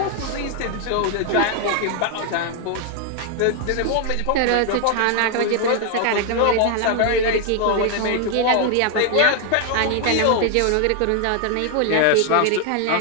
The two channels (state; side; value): different; both; correlation 0.00